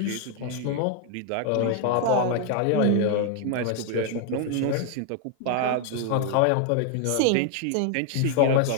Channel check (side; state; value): both; different; correlation 0.01